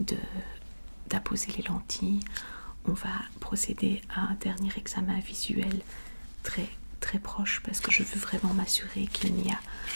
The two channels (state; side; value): inverted; both; correlation -1.00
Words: d'apposer les lentilles, on va procéder à un dernier examen visuel très proche parce que je veux vraiment m'assurer qu'il n'y a